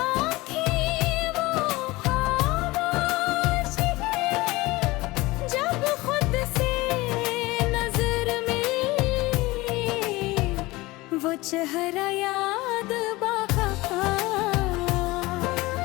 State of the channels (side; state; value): right; quieter; 20.8 dB